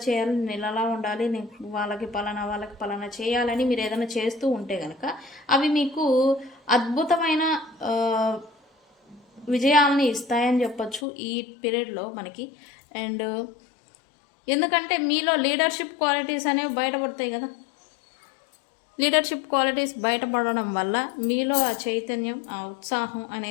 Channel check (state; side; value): drops out; right; at 11.1 s